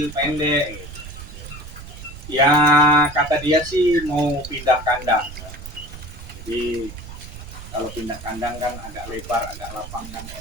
pendek. Gitu. Ya kata dia sih mau pindah kandang. Jadi kalau pindah kandang kan agak lebar, agak lapang kan.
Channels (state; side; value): noise; right; rumble, 13 dB below the sound